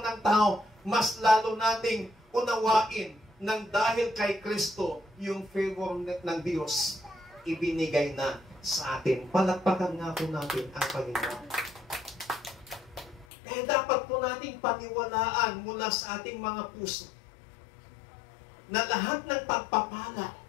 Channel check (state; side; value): drops out; right; at 13.2 s